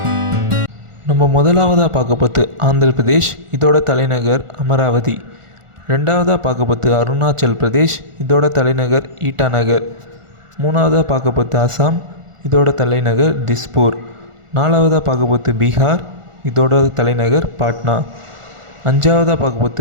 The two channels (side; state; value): left; late; 1.4 ms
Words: நம்ம முதலாவதாக பார்க்க போகிறது ஆந்திர பிரதேஷ், இதோட தலைநகர் அமராவதி. ரெண்டாவதாக பார்க்க போகிறது அருணாச்சல் பிரதேஷ், இதோட தலைநகர் ஈட்டாநகர். மூணாவதாக பார்க்க போகிறது அசாம், இதோட தலைநகர் திஸ்பூர். நாலாவதாக பார்க்க போகிறது பீகார், இதோட தலைநகர் பாட்னா. அஞ்சாவதாக பார்க்க